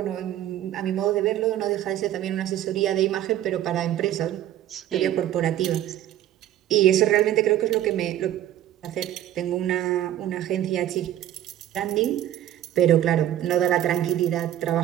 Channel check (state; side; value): quieter; left; 12.4 dB